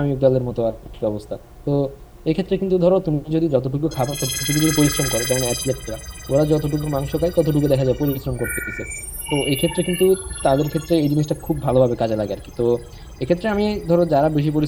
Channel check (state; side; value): identical; both; correlation 1.00